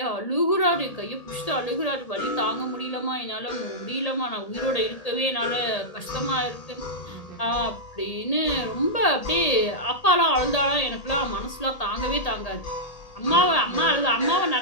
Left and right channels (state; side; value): late; right; 1.8 ms